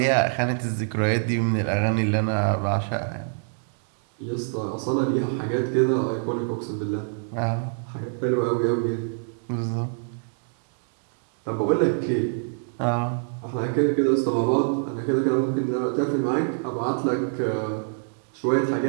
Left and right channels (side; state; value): left; silent; digital silence